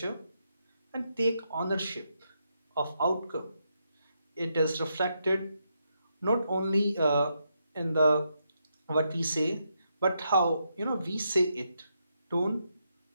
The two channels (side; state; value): both; inverted; correlation -0.81